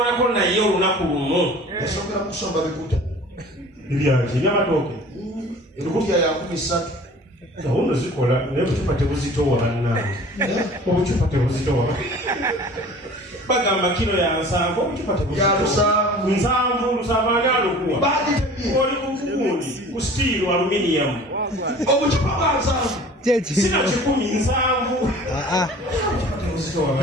naye olunaku lumu yasongera mu kusomba bikuta ebyaki ebyamatooke ebikutya ya 13 gahunda zikola naye obucupa tebuzitowa bannange obucupa tebuzitowa bagamba kilo ya 7 obucupa tebuzitowa 7 ani alukuwa oli kukugundi ku steel aluminium obucupa bwa 7 sina 7 tebuzitowa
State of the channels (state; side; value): normal; both; correlation 0.44